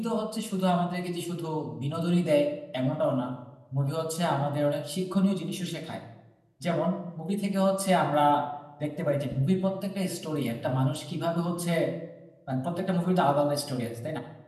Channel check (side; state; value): both; identical; correlation 1.00